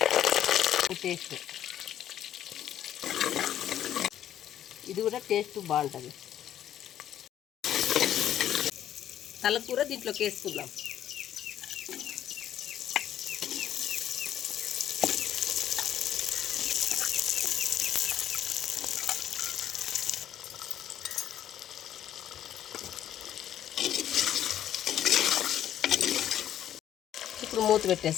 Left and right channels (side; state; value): right; quieter; 11.0 dB